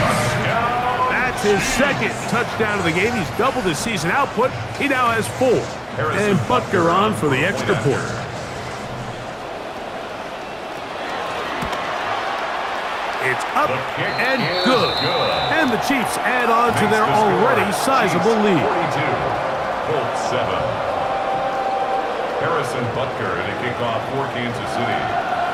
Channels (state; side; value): identical; both; correlation 1.00